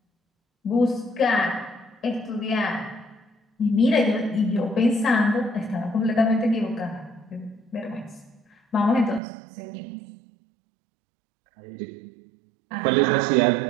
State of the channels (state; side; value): drops out; left; at 9.2 s